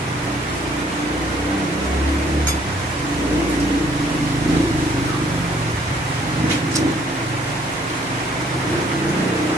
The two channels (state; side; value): normal; both; correlation 0.63